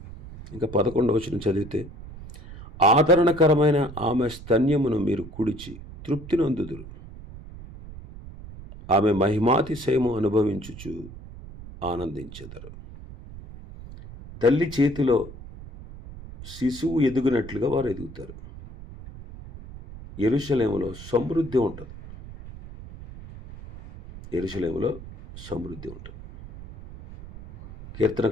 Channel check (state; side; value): noise; right; rumble, 15 dB below the sound